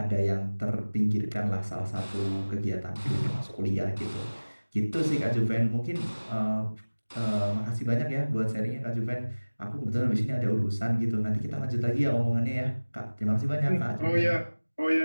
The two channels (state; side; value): inverted; both; correlation -1.00